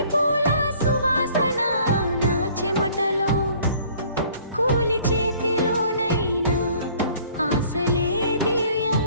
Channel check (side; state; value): both; inverted; correlation -0.55